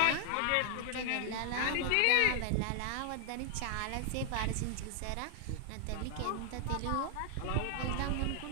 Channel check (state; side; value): different; both; correlation 0.00